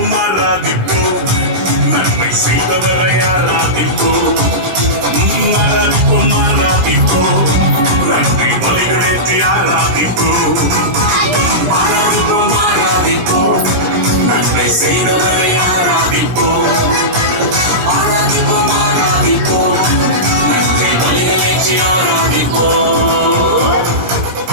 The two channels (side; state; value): left; late; 17 ms